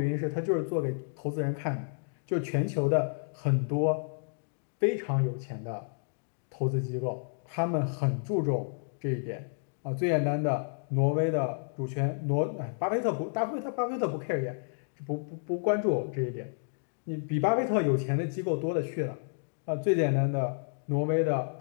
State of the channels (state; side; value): silent; right; digital silence